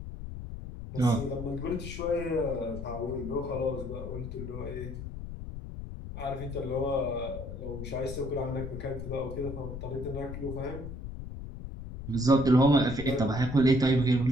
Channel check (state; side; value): noise; left; rumble, 9 dB below the sound